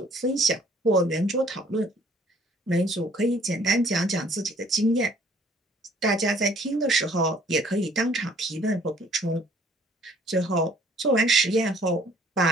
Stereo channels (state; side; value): normal; both; correlation 0.58